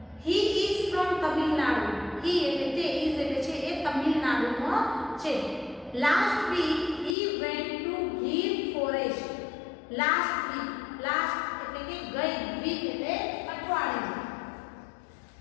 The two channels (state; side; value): drops out; right; at 7.2 s